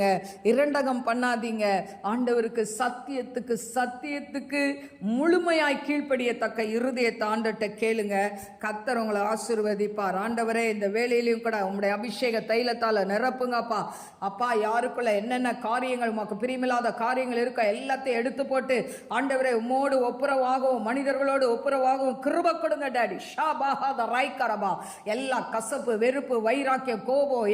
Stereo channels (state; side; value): identical; both; correlation 1.00